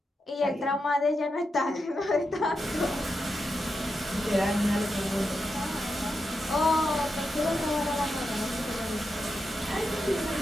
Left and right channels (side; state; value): both; normal; correlation 0.87